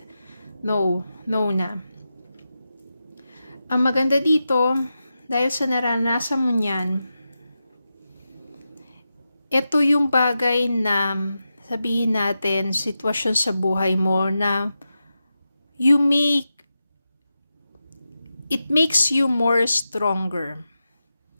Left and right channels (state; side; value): inverted; both; correlation -0.90